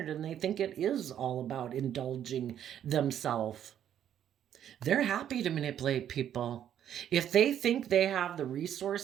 and they think it is all about indulging themselves. They're happy to manipulate people. If they think they have the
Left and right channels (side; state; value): left; quieter; 10.1 dB